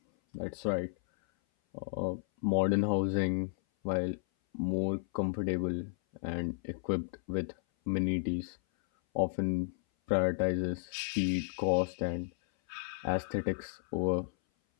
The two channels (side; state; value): right; silent; 56 dB below the other